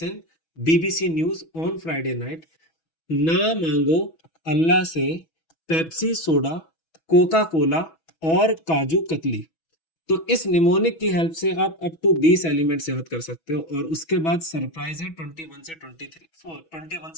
BBC news on Friday night. ना मांगो अल्लाह से पेप्सी सोडा, कोका कोला और काजू कतली। तो इस निमोनिक की हेल्प से आप अप टू 20 एलिमेंट्स याद कर सकते हो, और उसके बाद सरप्राइज है 21 से 23, 21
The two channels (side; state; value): right; late; 6.1 ms